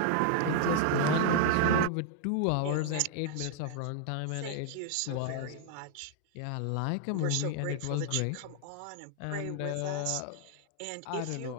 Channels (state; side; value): different; both; correlation 0.00